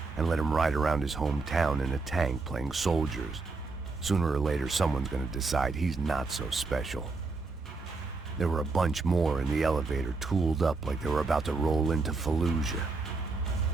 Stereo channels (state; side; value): quieter; left; 3.9 dB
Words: and let him ride around his hometown in a tank playing soldiers. Sooner or later, someone's gonna decide he's not so special. There were a bunch more in the elevator, tooled up like they were about to roll into Fallujah.